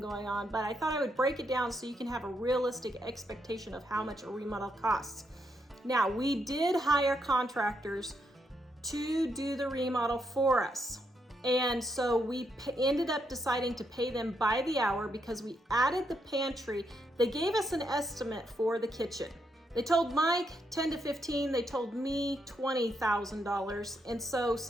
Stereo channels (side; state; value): both; normal; correlation 0.79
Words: going on, but I thought I would break it down so you can have a realistic expectation of how much a remodel costs. Now, we did hire contractors to do the remodel for us. And so we ended up deciding to pay them by the hour because we added the pantry. They gave us an estimate for the kitchen. They told Mike 10 to 15, they told me $20,000. And so